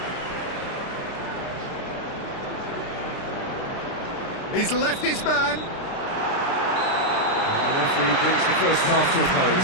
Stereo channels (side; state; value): right; late; 29 ms